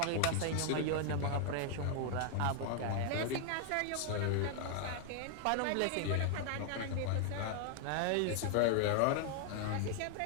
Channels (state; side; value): different; both; correlation 0.00